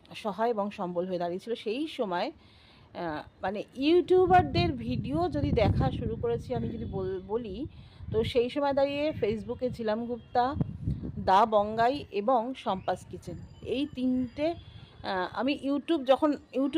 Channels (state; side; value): identical; both; correlation 1.00